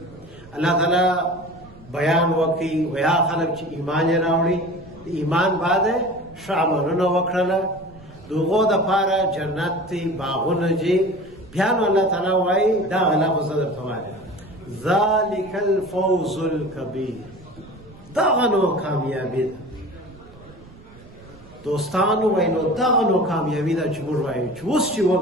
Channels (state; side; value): noise; right; rumble, 22 dB below the sound